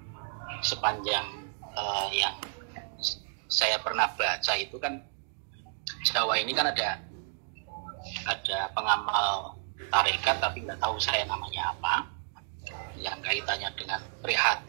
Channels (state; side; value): silent; left; digital silence